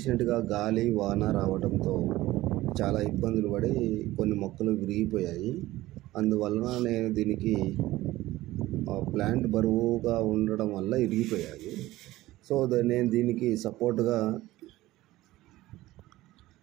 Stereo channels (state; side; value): quieter; left; 17.0 dB